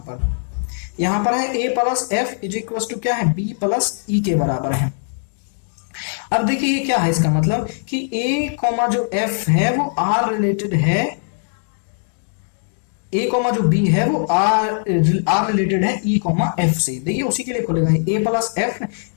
यहां पर है A plus F is equal to क्या है, बी प्लस ई के बराबर है। अब देखिए ये क्या है, इसका मतलब कि ए कॉमा जो एफ है वो आर रिलेटेड है, ए कॉमा जो बी है वो आर रिलेटेड है ई कॉमा एफ से। देखिए उसी के लिए खोलेगा, A plus F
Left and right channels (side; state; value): right; silent; digital silence